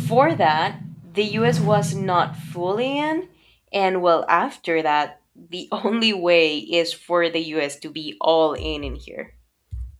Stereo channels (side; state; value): both; identical; correlation 1.00